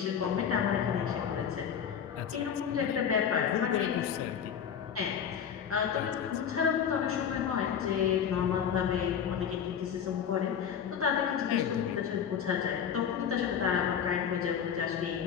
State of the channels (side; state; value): right; quieter; 8.0 dB